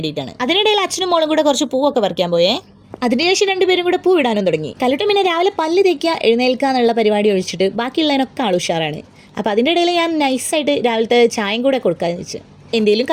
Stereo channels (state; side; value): identical; both; correlation 1.00